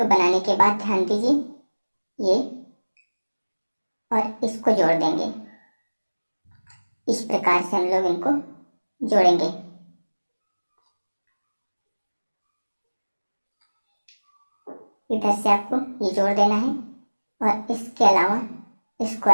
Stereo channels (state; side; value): inverted; both; correlation -1.00